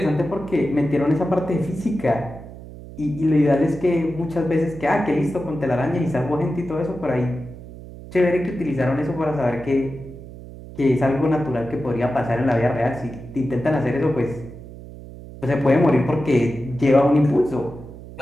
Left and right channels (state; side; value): noise; right; hum, 15 dB below the sound